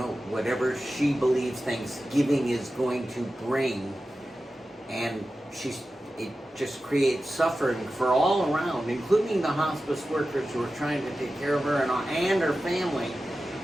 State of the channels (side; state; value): both; normal; correlation 0.93